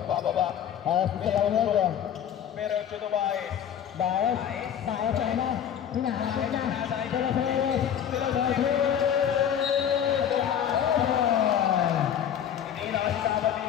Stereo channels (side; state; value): right; quieter; 9.2 dB